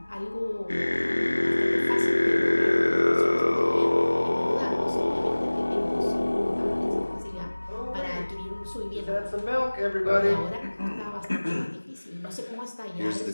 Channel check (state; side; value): inverted; both; correlation -1.00